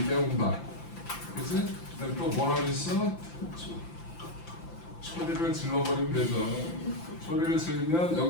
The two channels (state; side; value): late; right; 5.9 ms